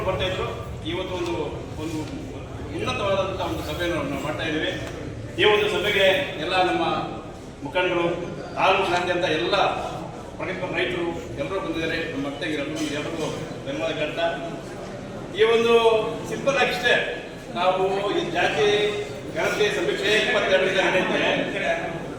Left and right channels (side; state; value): both; identical; correlation 1.00